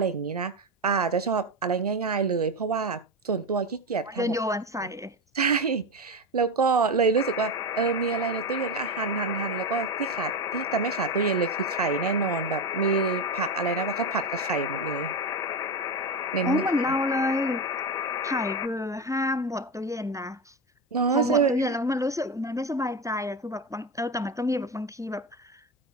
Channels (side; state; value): both; normal; correlation 0.16